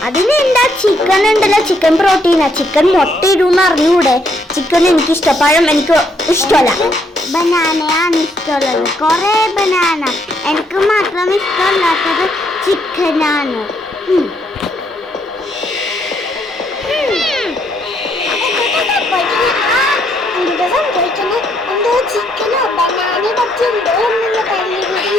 അതിനെന്താ ചിക്കൻ ഉണ്ടല്ലോ, chicken പ്രോട്ടീനാ. Chicken മുട്ട ഇടുന്ന് അറിഞ്ഞൂടെ? ചിക്കൻ എനിക്ക് ഇഷ്ടം, പഴം എനിക്ക് ഇഷ്ടമല്ല. ബനാനയാണ് ഇഷ്ടമുള്ളത്, കൊറേ ബനാന. എനിക്ക് മാത്രം ഇഷ്ടമല്ലാത്തത് ചിക്കനാണ്. ചിക്കനോ ബനാനയെ പറ്റി എന്തോ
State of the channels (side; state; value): both; normal; correlation 0.72